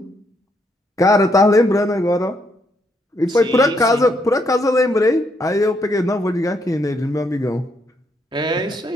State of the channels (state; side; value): normal; both; correlation 0.75